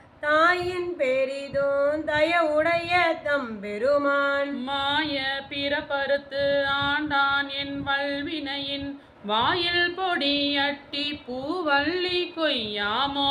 தாயின் பெரிதோன் தயவுடைய தம்பெருமான். மாய பிறப்பறுத்து ஆண்டான் என் வல்வினையின் வாயில் பொடியட்டி பூவல்லி கொய்யாமோ.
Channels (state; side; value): identical; both; correlation 1.00